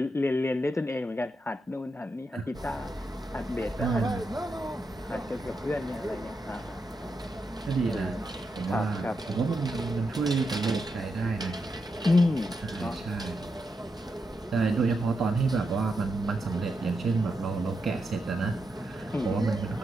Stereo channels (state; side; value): normal; both; correlation 0.85